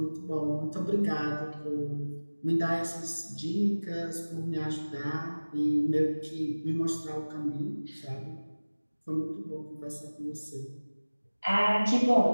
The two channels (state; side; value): inverted; both; correlation -1.00